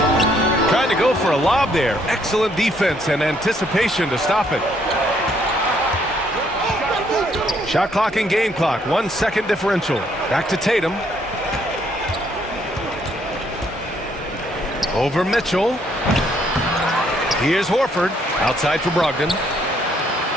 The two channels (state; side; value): normal; both; correlation 0.68